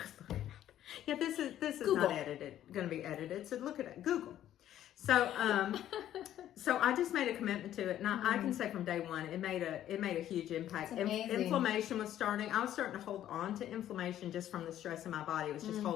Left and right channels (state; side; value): quieter; right; 11.9 dB